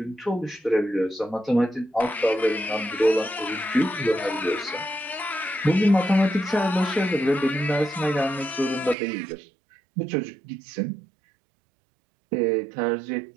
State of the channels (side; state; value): left; drops out; at 9.0 s